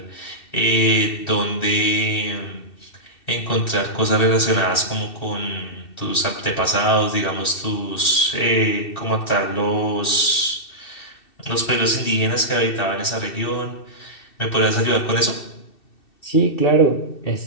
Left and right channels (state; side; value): late; right; 2.7 ms